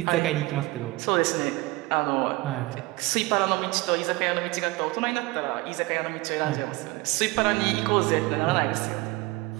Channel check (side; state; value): left; quieter; 21.6 dB